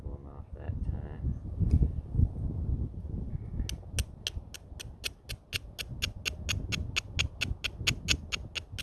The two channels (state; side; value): identical; both; correlation 1.00